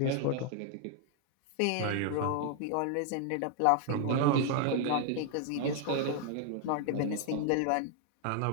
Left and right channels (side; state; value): both; different; correlation 0.00